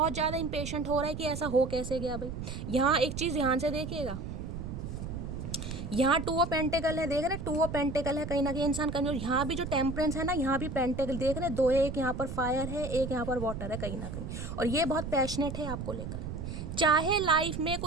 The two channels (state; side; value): noise; right; rumble, 6 dB below the sound